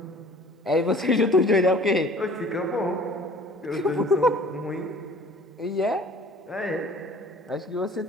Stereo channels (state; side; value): normal; both; correlation 0.50